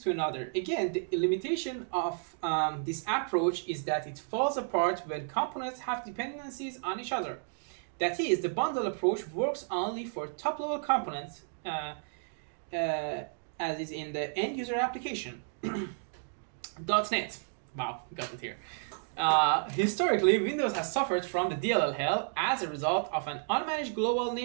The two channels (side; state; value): left; silent; digital silence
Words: to another. Again, the limitation of this approach is that it falls apart when components have dependencies on each other. That is, the bundle approach works only for top-level components, as is in the end-user application. .NET. Wow, got it here. Historically, Windows has suffered from the DLL hell as a result of an unmanaged global